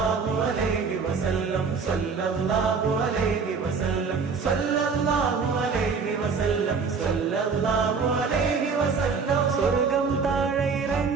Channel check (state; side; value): quieter; left; 5.2 dB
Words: അലൈഹി വസല്ലം സല്ലല്ലാഹു അലൈഹി വസല്ലം സല്ലല്ലാഹു അലൈഹി വസല്ലം സല്ലല്ലാഹു അലൈഹി വസല്ലം. സ്വർഗം താഴെ